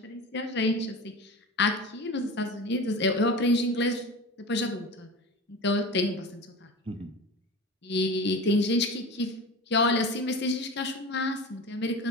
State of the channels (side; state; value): both; normal; correlation 0.31